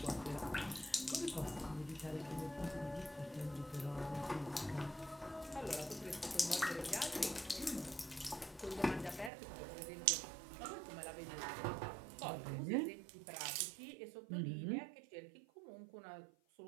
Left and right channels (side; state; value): left; drops out; at 9.3 s